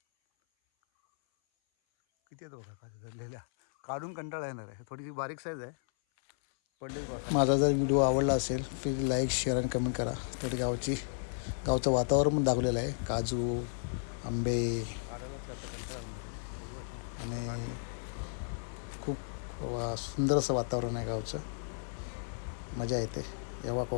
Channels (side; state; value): right; silent; 55 dB below the other